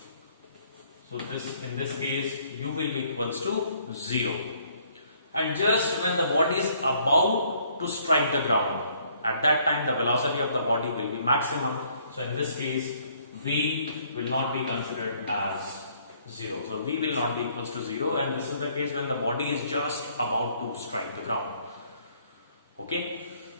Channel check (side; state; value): both; inverted; correlation -0.64